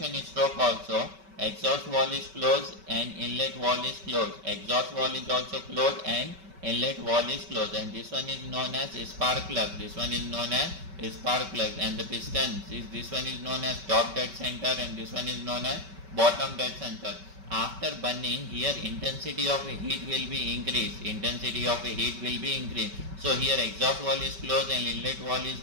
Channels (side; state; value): left; late; 5.2 ms